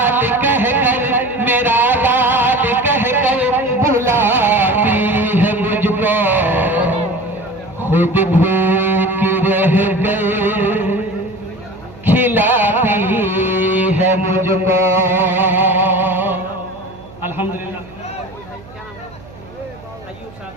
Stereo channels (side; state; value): right; noise; hum, 21 dB below the sound